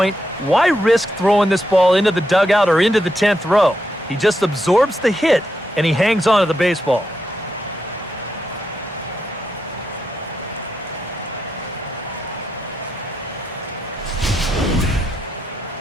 why risk throwing this ball into the dugout or into the 10th row? He just absorbs the hit, and he hangs on to the baseball.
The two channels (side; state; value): both; normal; correlation 0.83